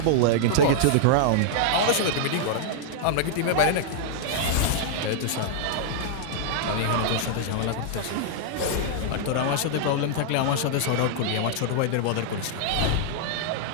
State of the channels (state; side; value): different; both; correlation -0.01